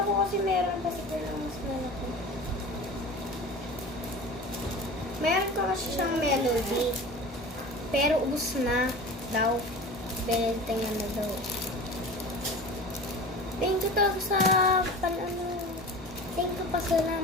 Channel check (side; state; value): both; normal; correlation 0.36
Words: ko kasi meron kasi pero mas malaki. Meron ko kasi siyang melody. Pero ubus na daw. Benentengan na daw. Thank you talaga sa Thank you pa.